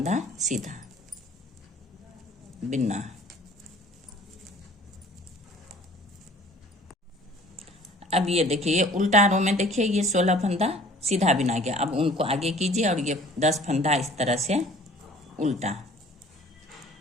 सीधा बिनना। अब ये देखिए, ये उल्टा रो में देखिए ये 16 फंदा सीधा बिना गया। अब उनको आगे कीजिए और ये 10 फंदा इस तरह से उल्टा,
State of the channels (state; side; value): normal; both; correlation 0.51